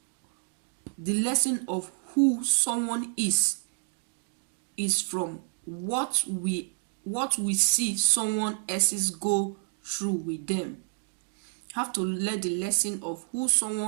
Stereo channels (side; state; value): left; silent; 58 dB below the other